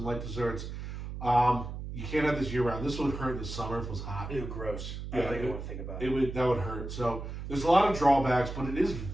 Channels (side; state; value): right; noise; hum, 7 dB below the sound